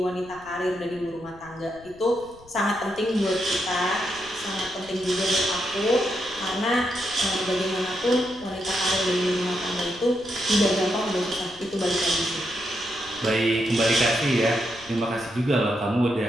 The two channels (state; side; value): noise; left; rumble, 24 dB below the sound